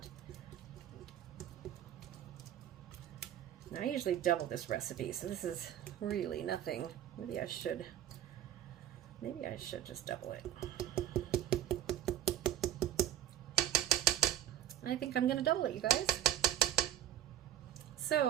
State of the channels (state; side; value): quieter; left; 11.5 dB